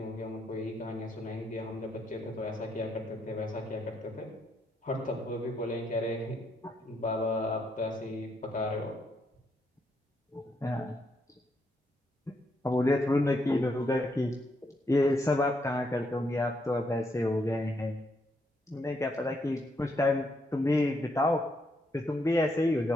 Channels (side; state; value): both; normal; correlation 0.77